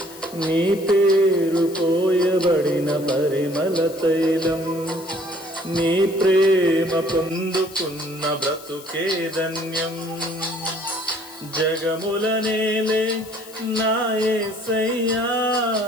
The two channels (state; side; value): noise; left; hiss, 18 dB below the sound